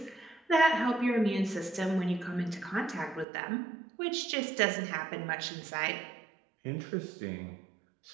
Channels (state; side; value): drops out; left; at 3.2 s